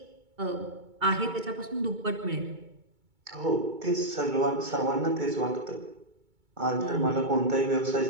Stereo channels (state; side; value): late; left; 2.2 ms